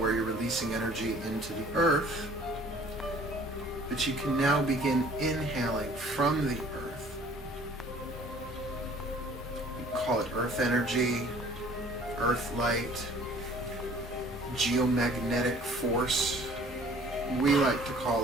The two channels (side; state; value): both; normal; correlation 0.53